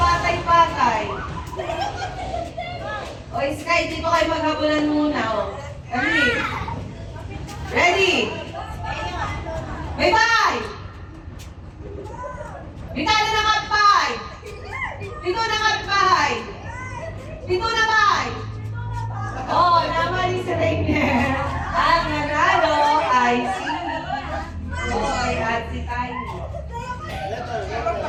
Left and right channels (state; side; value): identical; both; correlation 1.00